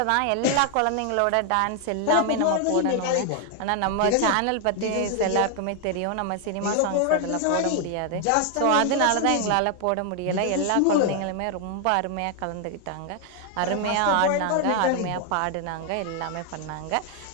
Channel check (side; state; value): both; different; correlation 0.00